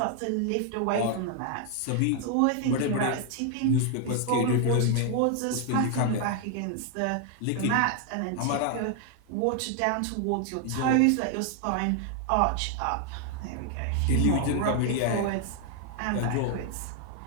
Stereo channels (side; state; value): both; different; correlation 0.00